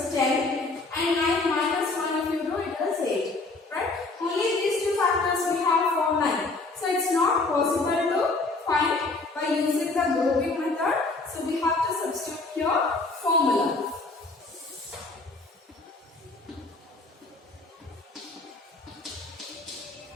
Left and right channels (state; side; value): quieter; right; 3.4 dB